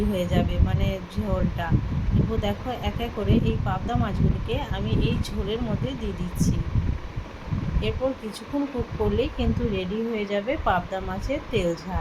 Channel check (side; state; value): both; identical; correlation 1.00